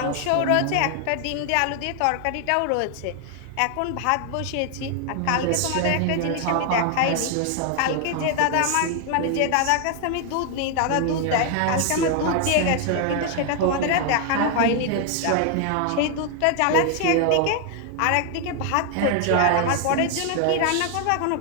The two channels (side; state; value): both; different; correlation 0.00